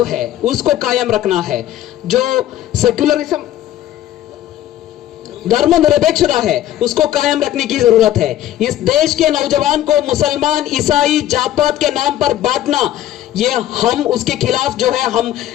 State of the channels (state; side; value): quieter; right; 12.6 dB